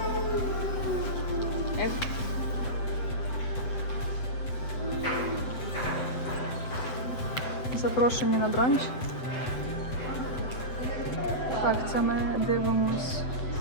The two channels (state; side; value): late; right; 7.9 ms